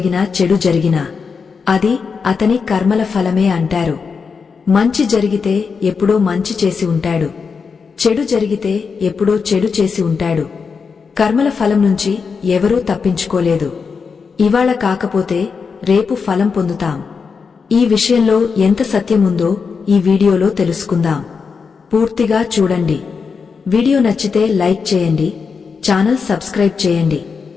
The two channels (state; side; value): quieter; right; 5.4 dB